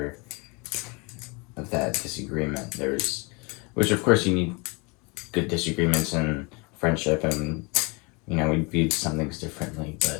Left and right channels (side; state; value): right; quieter; 29.4 dB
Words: of that disagreement. Which of course you need good disagreements in friendship, and you know, we viewed some things differently,